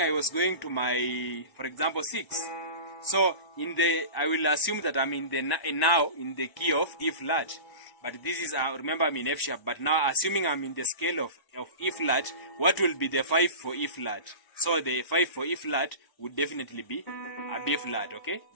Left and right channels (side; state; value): right; late; 1.0 ms